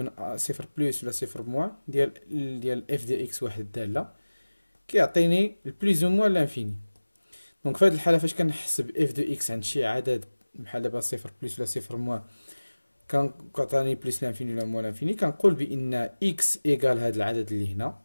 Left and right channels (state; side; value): inverted; both; correlation -1.00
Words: صفر بلس ولا صفر موان ديال اف دي اكس واحد الداله كيعطيني البليز او موان لانفيني. دونك في هذه الحاله فاش كنحسب اف دو اكس عند شي عدد بحال دابا صفر بلس ولا صفر موان كتعطيني بلس لانفيني ولا موان لانفيني، كنقول بان اكس ايكال هذا العدد اللي هنا